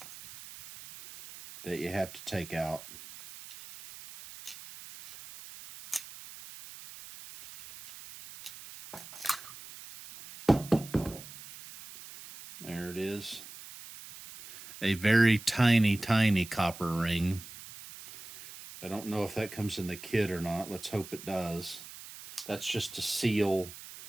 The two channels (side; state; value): right; noise; hiss, 15 dB below the sound